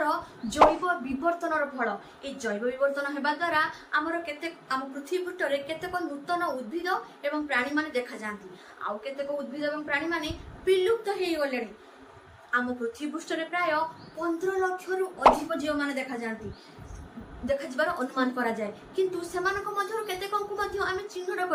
जैव विवर्तनर फल ए जैव विवर्तन हेबा द्वारा हमर केते हम पृथ्वी पृष्ठ रे केतेक नूतन उद्भिद एवं प्राणी माने देखा जांती आउ केतेक उद्भिद एवं प्राणी माने विलुप्त हेइ गलेनी हम पृथ्वी पृष्ठ रे प्राय 15 लाख रु अधिक जीव माने देखा जांती देखा जबार अनुमान करा जाए किंतु सेमानक मध्यरु केतेकंकु मध्य आमे चिन्हट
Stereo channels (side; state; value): both; identical; correlation 1.00